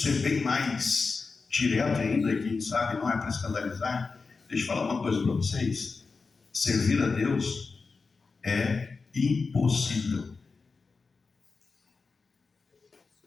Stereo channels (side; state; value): right; quieter; 4.4 dB